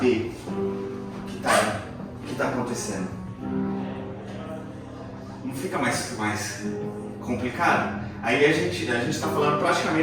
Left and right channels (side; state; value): both; identical; correlation 1.00